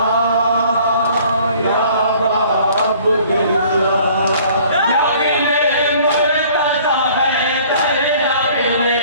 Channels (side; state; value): both; inverted; correlation -0.54